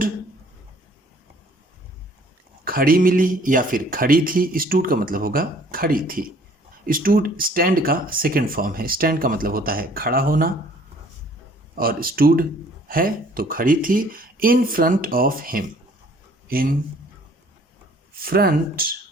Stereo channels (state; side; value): normal; both; correlation 0.57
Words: खड़ी मिली या फिर खड़ी थी। स्टूड का मतलब होगा खड़ी थी। स्टूड स्टैंड का सेकेंड फॉर्म है। स्टैंड का मतलब होता है खड़ा होना और स्टूड है तो खड़ी थी। In front of him, in front